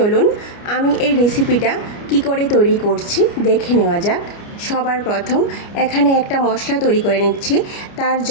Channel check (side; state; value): right; late; 29 ms